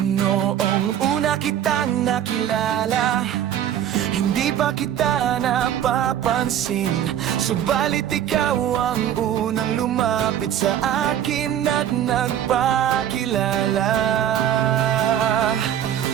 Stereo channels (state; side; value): quieter; left; 10.5 dB